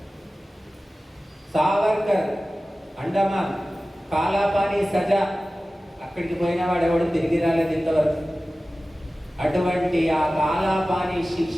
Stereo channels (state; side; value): normal; both; correlation 0.96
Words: సావర్కర్ అండమాన్ కాలాపాని సజా, అక్కడికి పోయిన వాడు ఎవడు తిరిగి రాలేదు ఇంతవరకు. అటువంటి ఆ కాలాపాని